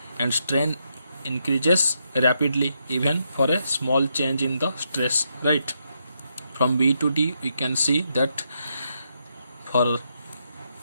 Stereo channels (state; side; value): inverted; both; correlation -0.79